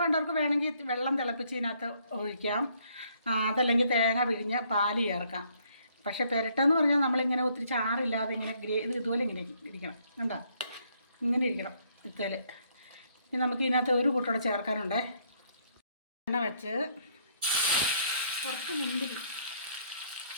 വേണമെങ്കിൽ വെള്ളം തിളപ്പിച്ച് ഇതിനകത്ത് ഒഴിക്കാം, അതല്ലെങ്കിൽ തേങ്ങ പിഴിഞ്ഞ് പാല് ചേർക്കാം. പക്ഷേ പെരട്ടെന്ന് പറഞ്ഞാൽ നമ്മളിങ്ങനെ ഒത്തിരി ചാറില്ലാതെ ഇങ്ങനെ ഇതുപോലെ ഇങ്ങനെ ഇരിക്കണം. കണ്ടോ, ഇങ്ങനെ ഇരിക്കണം ഇത്തേൽ. ഇനി നമുക്ക് ഇതിനകത്ത് ഒരു കൂട്ടോടെ ചേർക്കാനുണ്ടേ. എണ്ണ വെച്ച് കുറച്ച് മുന്തിരി,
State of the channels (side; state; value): both; inverted; correlation -0.68